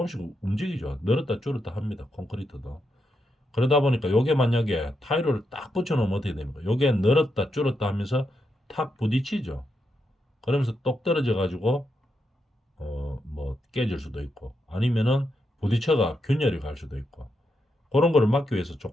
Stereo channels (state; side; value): normal; both; correlation 0.83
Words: 움직이죠. 늘었다 줄었다 합니다. 콘크리트도. 그러다 보니까 요게 만약에 타일을 딱 붙여놓으면 어떻게 됩니까? 요게 늘었다 줄었다 하면서 탁 부딪히죠. 그러면서 똑 떨어져 가지고 뭐 깨질 수도 있고 아니면은 부딪혀가 균열이 갈 수도 있고 그런 거를 막기 위해서